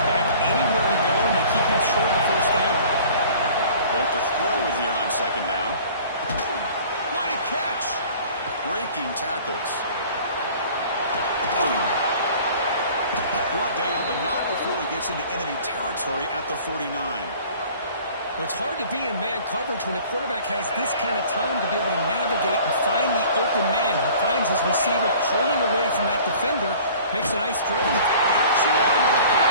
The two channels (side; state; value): both; inverted; correlation -0.48